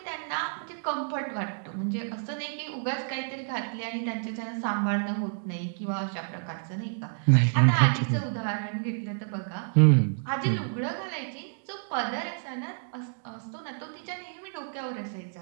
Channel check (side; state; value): left; silent; digital silence